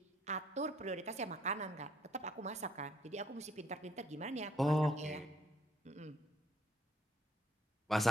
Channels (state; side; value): normal; both; correlation 0.66